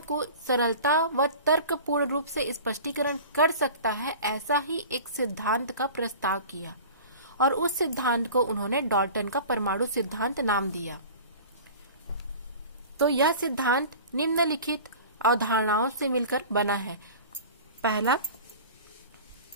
को सरलता व तर्कपूर्ण रूप से स्पष्टीकरण कर सकता है, ऐसा ही एक सिद्धांत का प्रस्ताव किया और उस सिद्धांत को उन्होंने डाल्टन का परमाणु सिद्धांत नाम दिया। तो यह सिद्धांत निम्नलिखित अवधारणाओं से मिलकर बना है। पहला,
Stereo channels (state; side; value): inverted; both; correlation -0.39